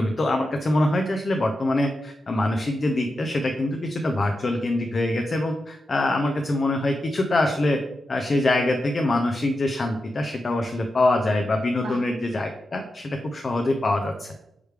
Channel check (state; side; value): normal; both; correlation 0.89